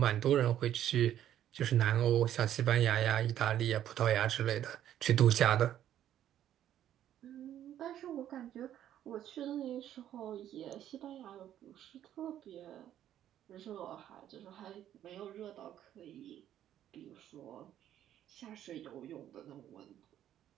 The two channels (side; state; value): left; quieter; 11.3 dB